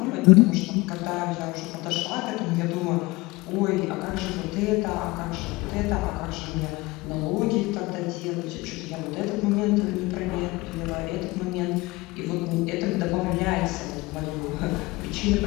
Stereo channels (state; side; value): quieter; right; 22.1 dB